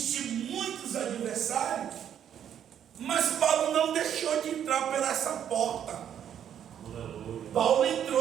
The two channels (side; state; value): left; quieter; 9.4 dB